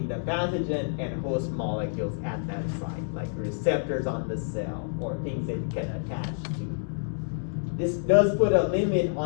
the pathogen and host molecules at that site, like receptors on the cell or things that it can attach to. This does put a limit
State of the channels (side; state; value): right; silent; digital silence